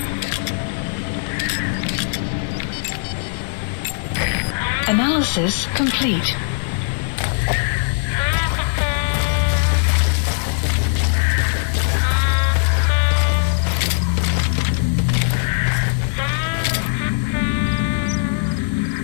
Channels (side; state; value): right; silent; 66 dB below the other